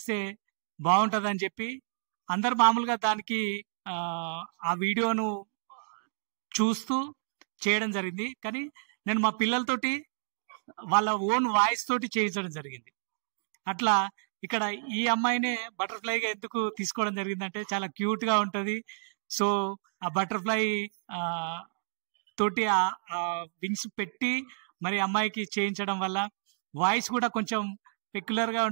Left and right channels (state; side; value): silent; left; digital silence